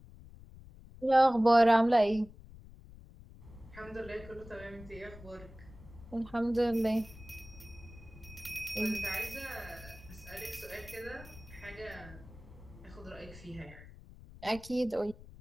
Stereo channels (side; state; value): left; noise; rumble, 18 dB below the sound